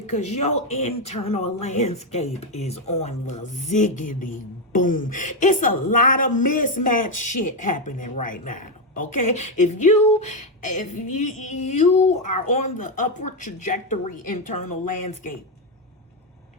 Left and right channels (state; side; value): normal; both; correlation 0.06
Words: your internal landscape is on the ziggity boom. It's a lot of mismatched shit happening right now. Okay, if you are on the upward trajectory internal landscape